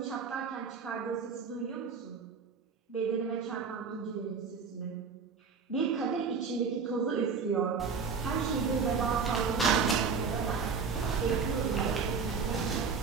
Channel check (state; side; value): quieter; left; 5.4 dB